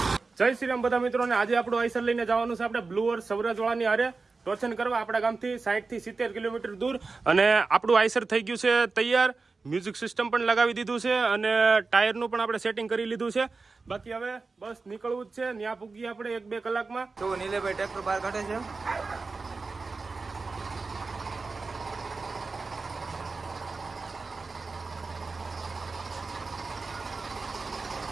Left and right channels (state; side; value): quieter; left; 4.1 dB